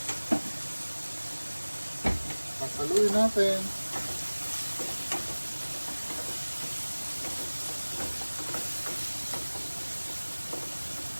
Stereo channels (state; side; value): inverted; both; correlation -1.00